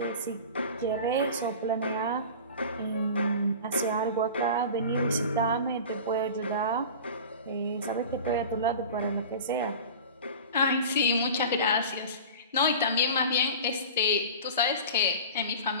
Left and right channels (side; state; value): both; inverted; correlation -0.35